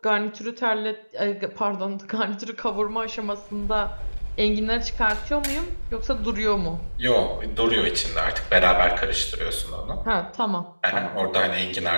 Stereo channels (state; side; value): inverted; both; correlation -1.00